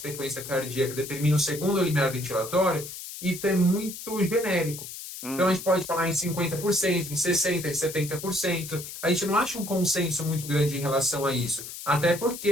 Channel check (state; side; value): noise; left; hiss, 10 dB below the sound